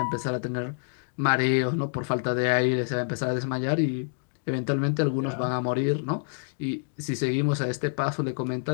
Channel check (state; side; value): silent; right; digital silence